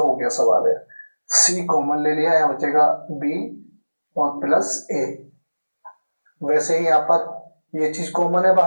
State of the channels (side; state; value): both; inverted; correlation -1.00